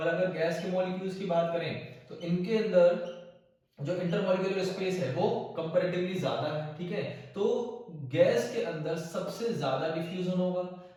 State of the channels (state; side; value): identical; both; correlation 1.00